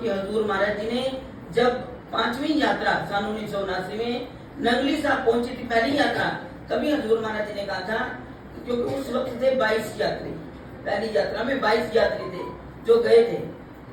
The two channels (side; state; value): both; identical; correlation 1.00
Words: हजूर महाराज जी ने जब 5वीं यात्रा सन 1979 में नंगली साहब पहुंची थी, पहली यात्रा, तभी हजूर महाराज जी ने कहा था, क्योंकि उस वक्त थे 22 यात्री, पहली यात्रा में 22 यात्री थे जो गए थे।